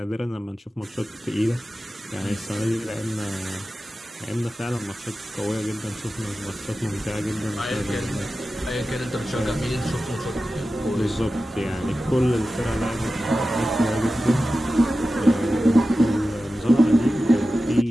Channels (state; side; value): normal; both; correlation 0.94